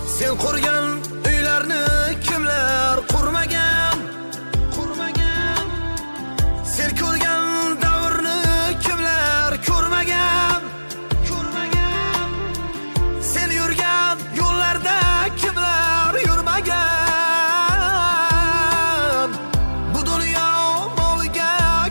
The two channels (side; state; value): both; inverted; correlation -1.00